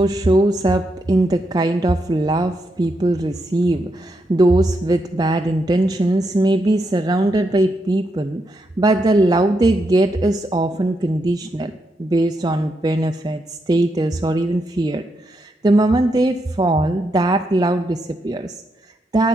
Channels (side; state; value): both; normal; correlation 0.82